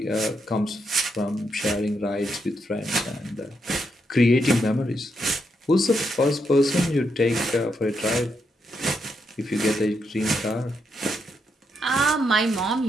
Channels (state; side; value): normal; both; correlation 0.81